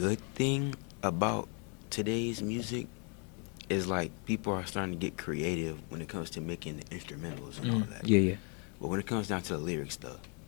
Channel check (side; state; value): right; quieter; 37.0 dB